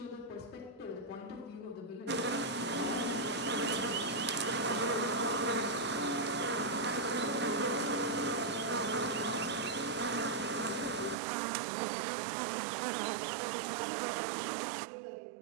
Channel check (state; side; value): drops out; left; at 11.2 s